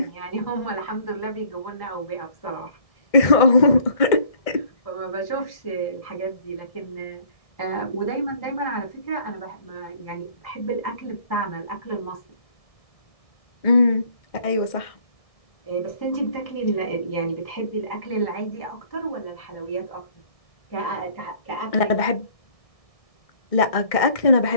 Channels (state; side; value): late; right; 1.6 ms